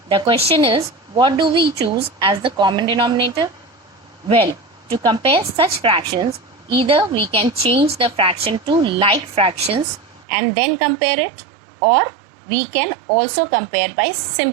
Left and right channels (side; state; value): left; drops out; at 10.2 s